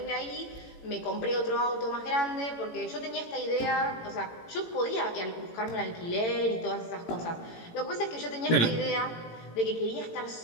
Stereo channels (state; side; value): late; right; 18 ms